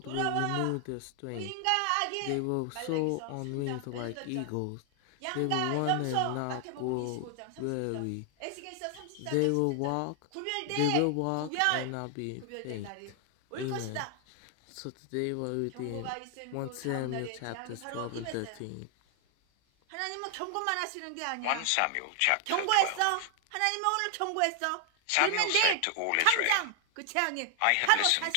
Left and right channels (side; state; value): both; different; correlation 0.00